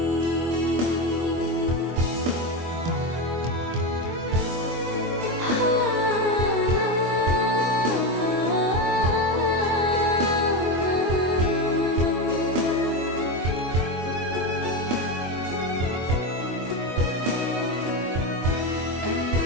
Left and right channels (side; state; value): left; late; 24 ms